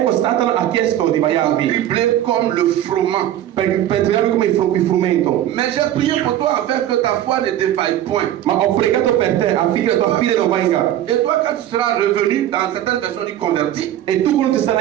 Satana ha chiesto di pour baiarvi dribbler comme le froment. per tirarvi come il frumento, Mais j'ai prié pour toi afin que ta foi ne défaille point. ma ho pregato per te affinché la tua fede non venga. Et toi, quand tu seras revenu, dans certaines versions dit converti, E tu quando ti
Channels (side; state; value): left; quieter; 12.2 dB